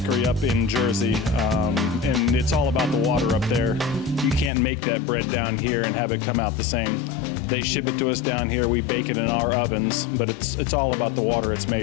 up in Jersey, and it's all about the water up there. You can't make that bread down here and have it come out the same. They ship it to us down here, we bake it in our ovens, but it's all about the water it's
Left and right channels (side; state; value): right; drops out; at 4.5 s